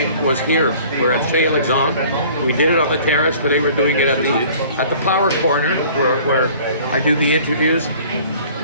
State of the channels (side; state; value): both; inverted; correlation -0.50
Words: was here. We're at Chez Alexandre. We did it on the terrace, but they were doing it at the Power Corner, where I do the interviews.